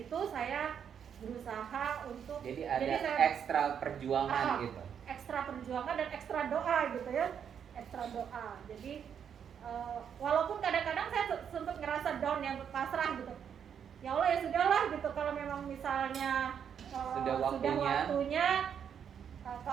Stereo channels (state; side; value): quieter; left; 8.0 dB